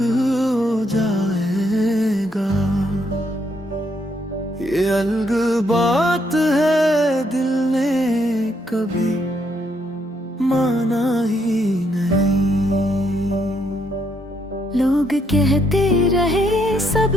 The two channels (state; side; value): normal; both; correlation 0.74